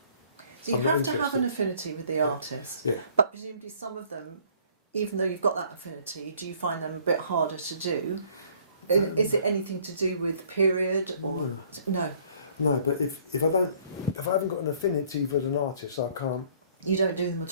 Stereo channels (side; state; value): both; inverted; correlation -0.59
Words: So you I'm not have to have interested. an affinity with the artist. Yeah. But presumably some of them, even though you've got that affinity, do you find them a bit harder to do? Is it anything to do with period or no? No, but if I haven't got an affinity with an artist, I can't. You don't do them